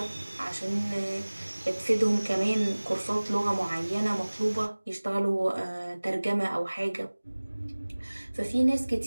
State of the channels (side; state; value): both; inverted; correlation -1.00